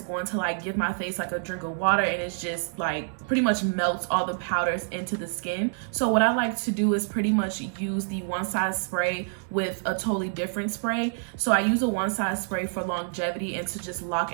going to like give my face like a drink of water, and it's just like pretty much melts all the powders into the skin. So what I like to do is pretty much use the Onesize spray with a totally different spray. So I use a Onesize spray for longevity and to just lock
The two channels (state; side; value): silent; left; digital silence